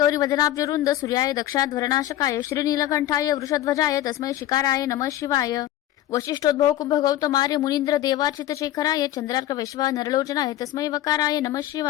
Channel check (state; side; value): quieter; right; 13.5 dB